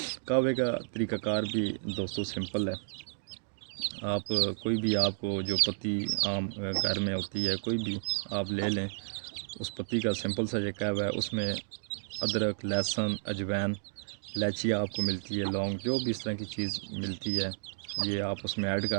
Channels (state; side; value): silent; left; digital silence